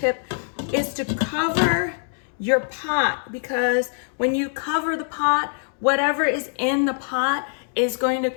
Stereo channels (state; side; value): silent; right; 63 dB below the other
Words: is to cover your pot, because when you cover the pot, whatever is in the pot is going to